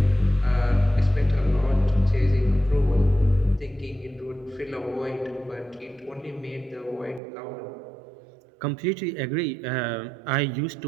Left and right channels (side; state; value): left; drops out; at 7.2 s